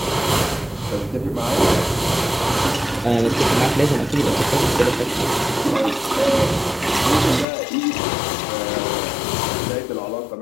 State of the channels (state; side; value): drops out; right; at 7.5 s